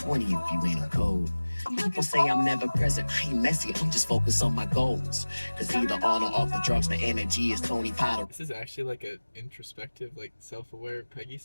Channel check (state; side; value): inverted; both; correlation -1.00